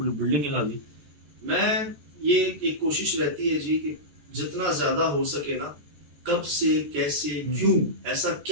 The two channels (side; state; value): left; late; 14 ms